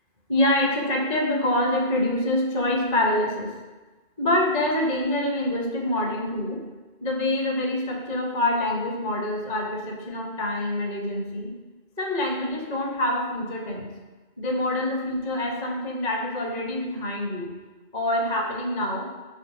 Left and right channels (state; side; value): late; left; 2.5 ms